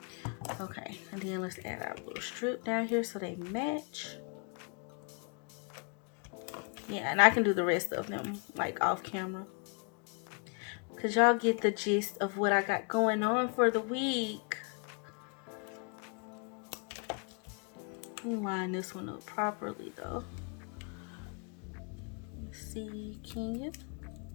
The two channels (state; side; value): quieter; right; 37.1 dB